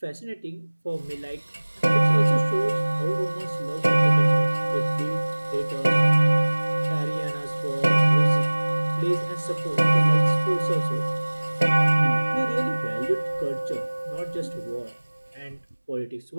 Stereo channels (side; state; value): both; inverted; correlation -1.00